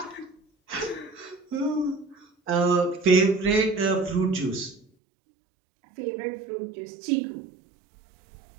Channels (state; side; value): drops out; left; at 4.9 s